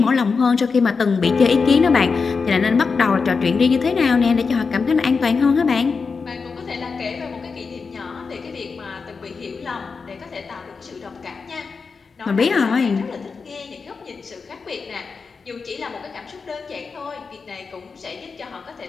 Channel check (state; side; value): quieter; right; 4.9 dB